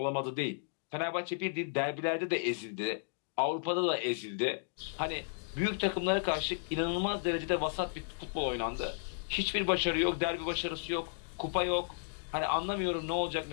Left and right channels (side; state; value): right; silent; digital silence